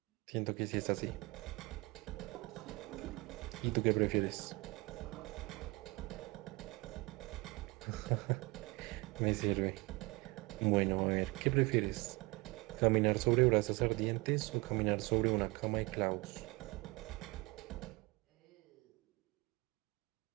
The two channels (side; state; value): left; quieter; 24.5 dB